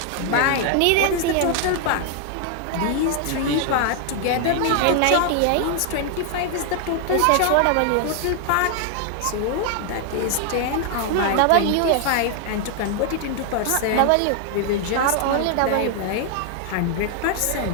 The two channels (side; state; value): both; different; correlation 0.00